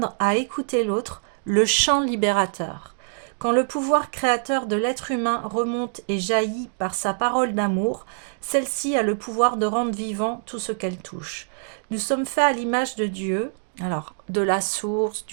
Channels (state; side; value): silent; left; digital silence